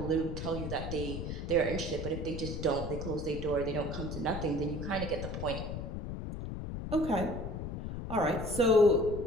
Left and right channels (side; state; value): left; noise; rumble, 5 dB below the sound